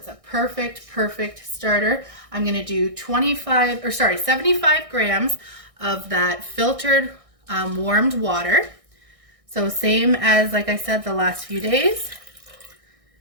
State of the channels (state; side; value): late; left; 1.6 ms